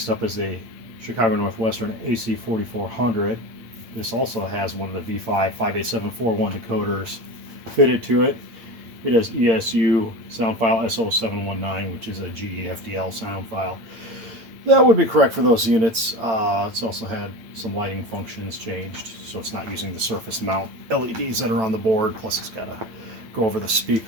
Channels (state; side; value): late; left; 8.8 ms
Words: up is a Chicago Northwestern AC4400. This also has one of the V5 58741 decoders fitted to it. It has ESU sound file S0719, which is a GE FDL sound file. That would be correct for those units. It's also had some lighting functions changed, so it's not using the surface mount LEDs that are on the board, plus it's got to go over the